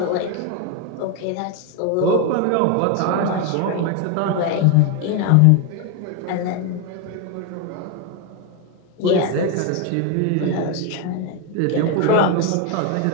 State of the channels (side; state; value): both; different; correlation 0.01